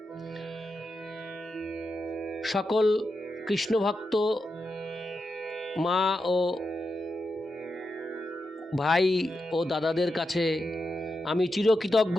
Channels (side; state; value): both; normal; correlation 0.87